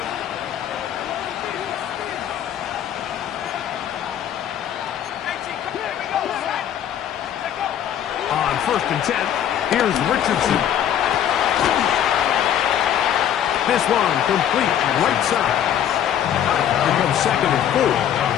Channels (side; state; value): right; quieter; 10.1 dB